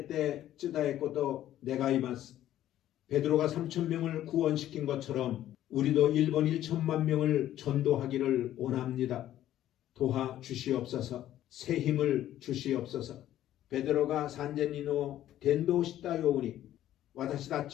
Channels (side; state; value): right; quieter; 12.6 dB